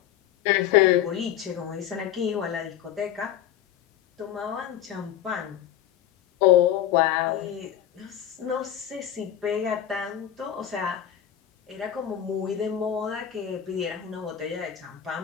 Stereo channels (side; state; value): right; quieter; 10.6 dB